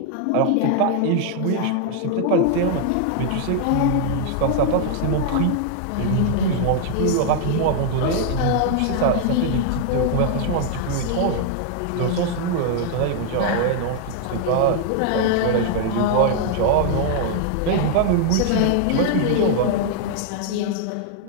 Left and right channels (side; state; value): both; different; correlation 0.00